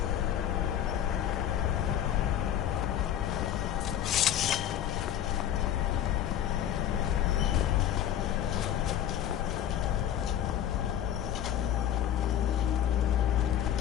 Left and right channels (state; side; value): quieter; right; 10.6 dB